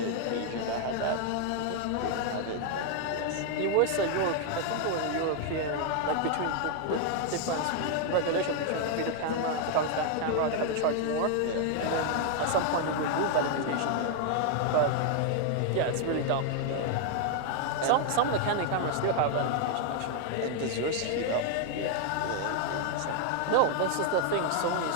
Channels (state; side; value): different; both; correlation 0.00